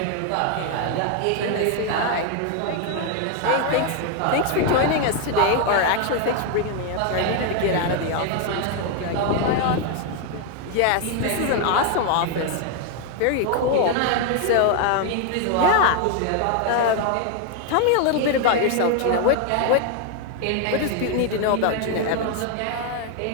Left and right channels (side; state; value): both; different; correlation 0.01